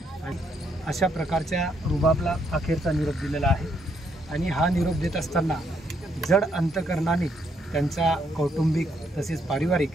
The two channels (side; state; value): both; normal; correlation 0.73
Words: आणि अशा प्रकारच्या रुबाबला अखेरचा निरोप दिलेला आहे। आणि हा निरोप देत असताना जड अंतकरणाने त्यांचा कौटुंबिक तसेच पारिवारिक